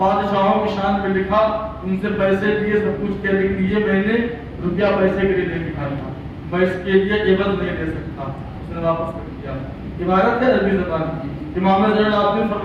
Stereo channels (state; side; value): identical; both; correlation 1.00